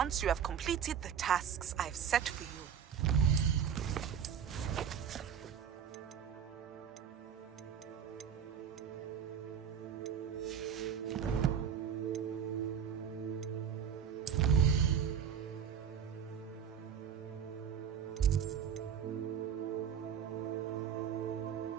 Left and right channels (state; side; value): quieter; left; 8.1 dB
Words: you have completed the tasks I've set for you.